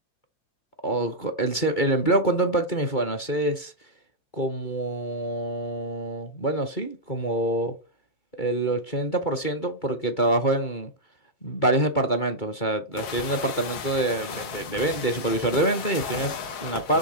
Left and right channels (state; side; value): late; right; 2.3 ms